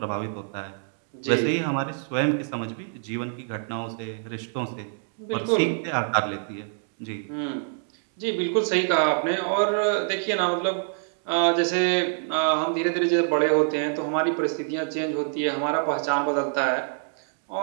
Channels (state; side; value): silent; left; digital silence